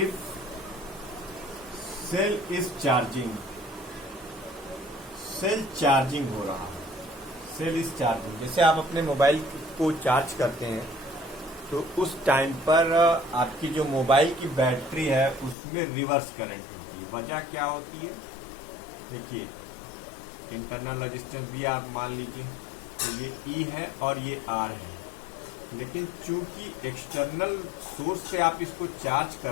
if cell is charging, cell charging हो रहा है, सेल इज चार्जिंग। जैसे आप अपने मोबाइल को चार्ज करते हैं तो उस टाइम पर आपकी जो मोबाइल की बैटरी है उसमें रिवर्स करंट होती है। वजह क्या होती है? देखिए, इंटरनल रेजिस्टेंस भी आप मान लीजिए, तो ये E है और ये R है, लेकिन चूंकि एक्सटर्नल सोर्स से आप इसको चार्ज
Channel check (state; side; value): drops out; right; at 15.6 s